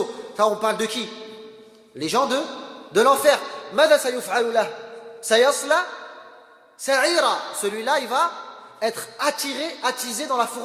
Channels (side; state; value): both; identical; correlation 1.00